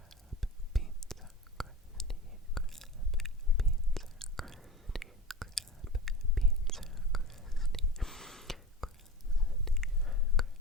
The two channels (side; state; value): both; normal; correlation 0.33